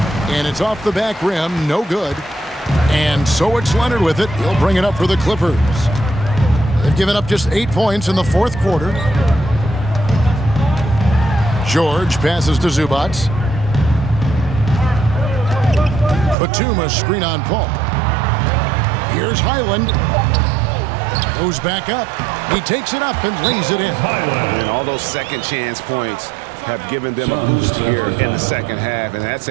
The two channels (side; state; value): left; drops out; at 16.4 s